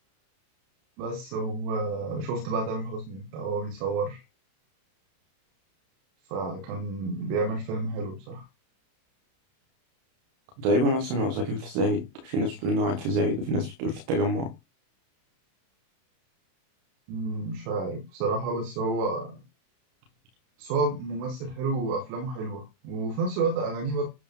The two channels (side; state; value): left; late; 32 ms